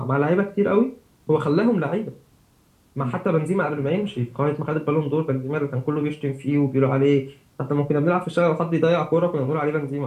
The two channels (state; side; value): identical; both; correlation 1.00